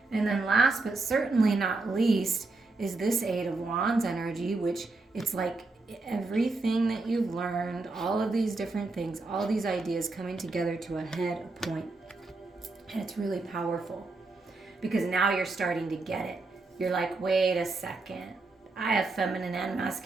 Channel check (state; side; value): quieter; left; 3.5 dB